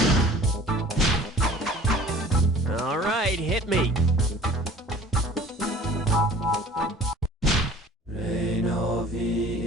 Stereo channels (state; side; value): normal; both; correlation 0.47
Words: All right, hit me. Reinovi